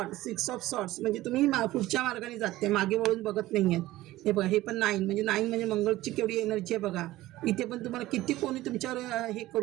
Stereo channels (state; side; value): quieter; left; 16.7 dB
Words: ऑफ सॉर्ट्स म्हणजे तुम्ही पुढच्या मार्गाने जाते, मागे वळून बघत नाही आहेत. हे बघा हे पण 9 म्हणजे मंगळची केवढी एनर्जी आहे बघा. इथे पण तुम्हाला किती कोणी तुमच्यावर हे